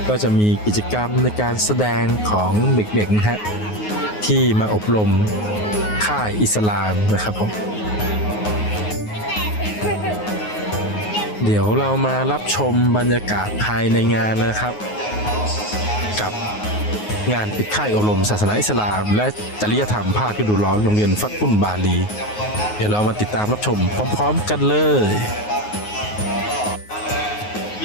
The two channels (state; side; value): late; right; 9.5 ms